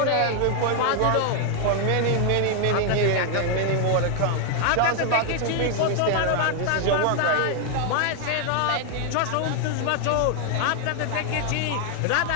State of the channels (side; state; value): both; different; correlation 0.00